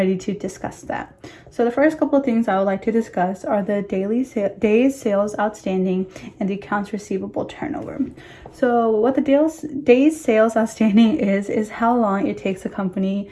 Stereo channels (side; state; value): both; identical; correlation 1.00